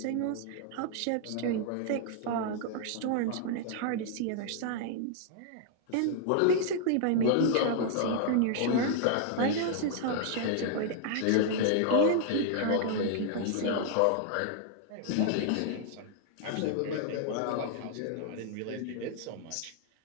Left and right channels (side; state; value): both; different; correlation 0.00